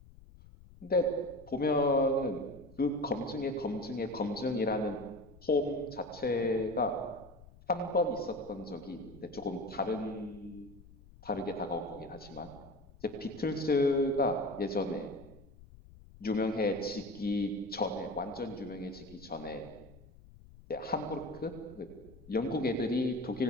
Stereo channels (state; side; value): noise; left; rumble, 21 dB below the sound